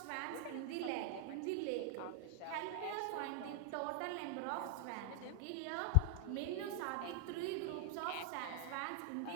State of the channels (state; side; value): different; both; correlation 0.00